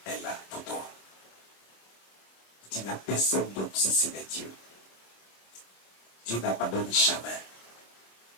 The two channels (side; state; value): right; late; 26 ms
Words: est là pour toi. Tu n'as personne d'autre si ce n'est Dieu. Dieu n'abandonne jamais.